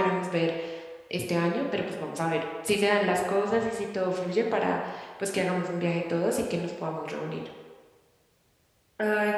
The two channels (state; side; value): identical; both; correlation 1.00